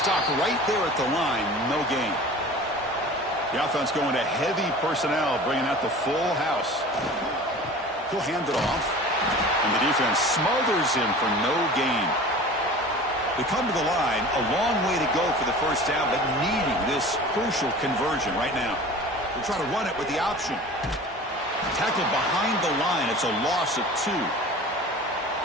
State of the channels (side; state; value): both; normal; correlation 0.40